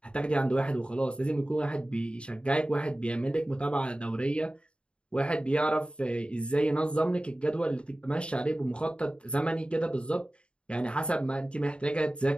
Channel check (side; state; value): right; late; 0.056 ms